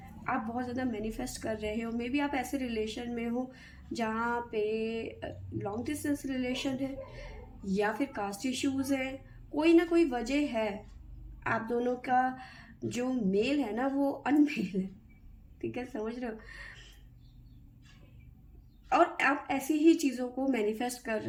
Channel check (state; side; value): identical; both; correlation 1.00